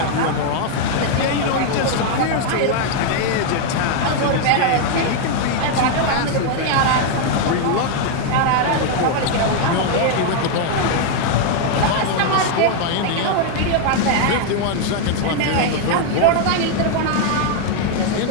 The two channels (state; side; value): different; both; correlation 0.00